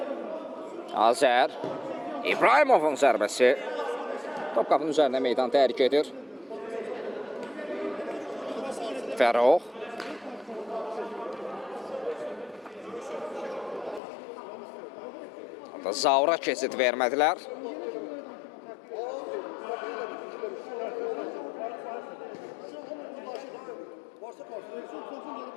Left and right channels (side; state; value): right; drops out; at 14.0 s